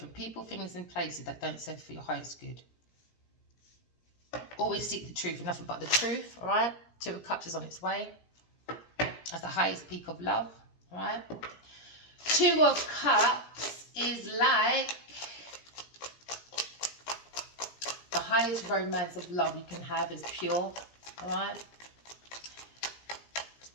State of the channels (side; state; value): right; late; 17 ms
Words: people, things and places that don't serve for your highest good. Always seek the truth and nothing but the truth, all right? Two of Cups is on its way. That's the highest peak of love, all right? Two of Cups is like the highest romance of love you can have is pure, all right?